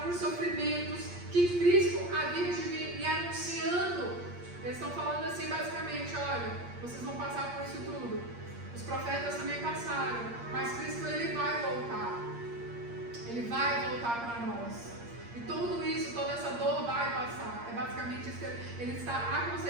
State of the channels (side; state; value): left; late; 8.5 ms